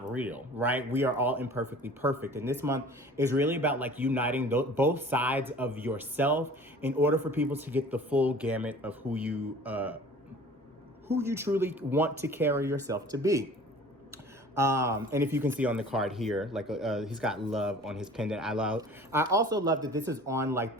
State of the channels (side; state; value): both; normal; correlation 0.46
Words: real, right? We are all imperfectly perfect. And this month is really about like uniting both sides of yourself in order for people to get the full gamut of who you truly want to carry yourself to be. And if you can see on the card here, like he's got love on his pendant. I also love that this is on like